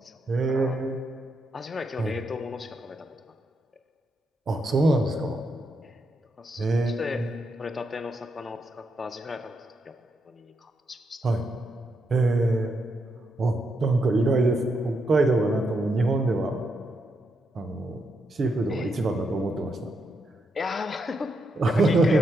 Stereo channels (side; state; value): both; normal; correlation 0.81